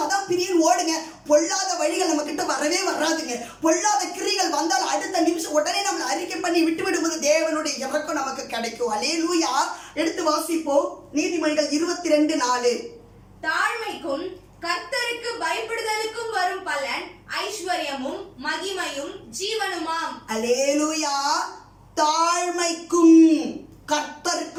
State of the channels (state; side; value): identical; both; correlation 1.00